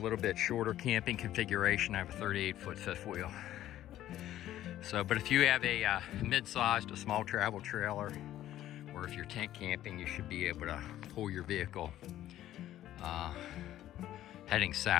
bit shorter camping configuration. I have a 38-foot fifth wheel. So, but if you have a mid-sized, a small travel trailer, or if you're tent camping, you should be able to pull your vehicle heading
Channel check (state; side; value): quieter; right; 13.0 dB